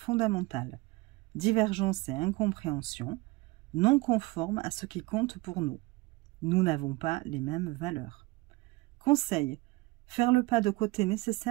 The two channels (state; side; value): quieter; left; 21.8 dB